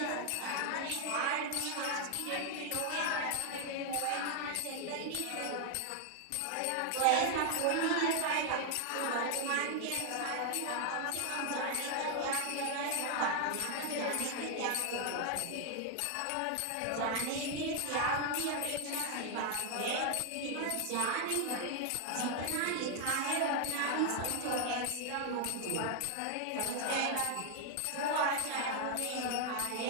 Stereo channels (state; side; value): different; both; correlation 0.00